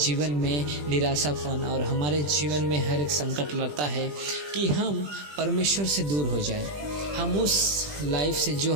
में निराशापन और हमारे जीवन में हर एक संकट लाता है कि हम परमेश्वर से दूर हो जाएं। हम उस लाइफ से जो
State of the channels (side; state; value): left; late; 20 ms